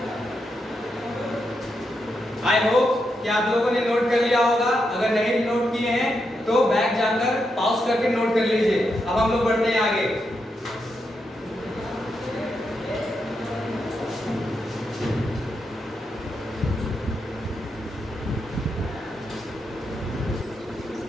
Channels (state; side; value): normal; both; correlation 0.84